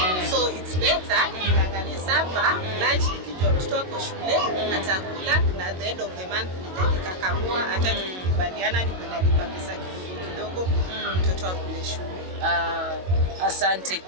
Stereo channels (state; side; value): late; left; 22 ms